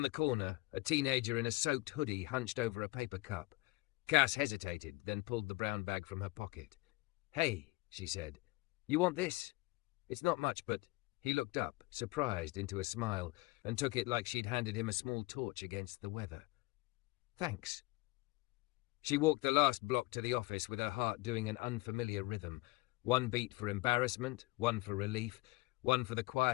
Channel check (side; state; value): right; quieter; 22.9 dB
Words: the corner, a teenager in a soaked hoodie hunched over a paper cup. Cass hesitated, then pulled the brown bag from her pocket. "Hey," she said. "You want this?" "It's not much, but..." He looked up, surprised, into a smile, and took it like she'd handed him a small torch against the weather. "Thanks." She walked the last block to the office with her heart doing an unfamiliar rhythm. One beat for embarrassment, one for relief, one for the